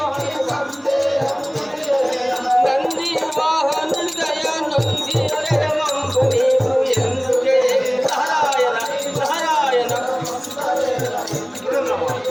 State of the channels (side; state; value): both; identical; correlation 1.00